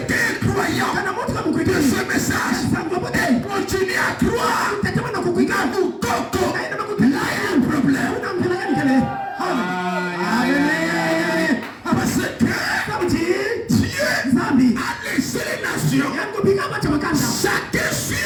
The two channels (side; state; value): both; identical; correlation 1.00